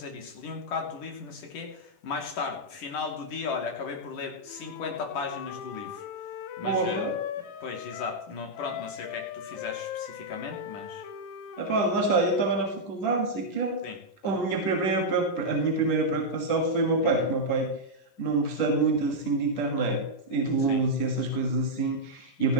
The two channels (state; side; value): late; right; 10 ms